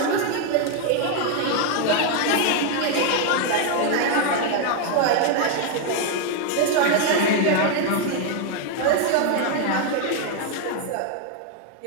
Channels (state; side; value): different; both; correlation 0.01